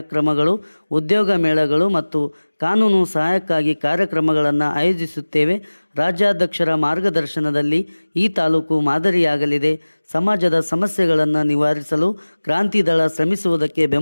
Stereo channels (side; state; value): both; inverted; correlation -1.00